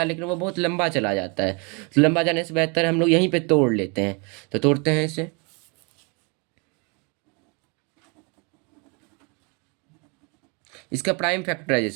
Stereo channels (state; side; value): quieter; left; 32.3 dB